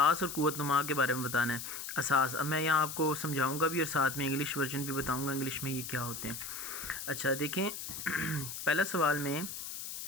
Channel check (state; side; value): noise; left; hiss, 7 dB below the sound